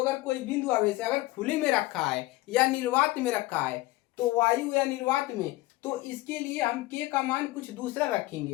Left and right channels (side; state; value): right; quieter; 19.1 dB